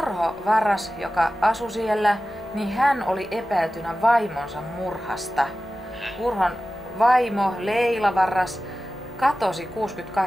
Varras, joka asui siellä, niin hän oli epäiltynä vaimonsa murhasta. Urhon vaimo Leila Varras katosi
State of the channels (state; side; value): normal; both; correlation 0.95